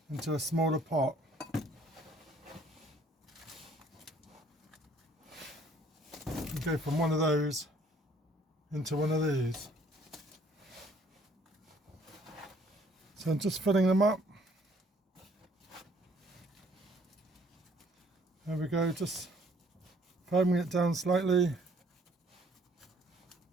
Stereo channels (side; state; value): both; normal; correlation 0.61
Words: into a smaller pot. And go from one of those into one of these. So I'm just filling them up. There we go, just firming it down slightly.